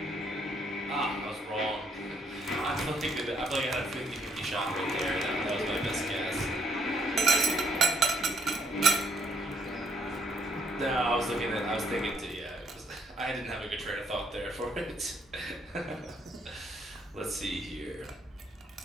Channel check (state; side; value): normal; both; correlation 0.70